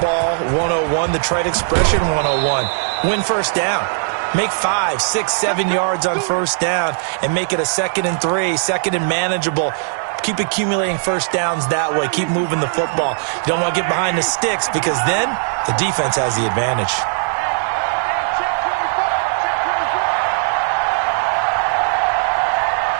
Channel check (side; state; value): left; silent; digital silence